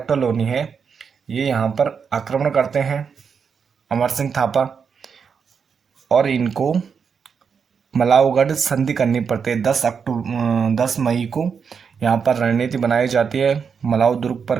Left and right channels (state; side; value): quieter; left; 6.3 dB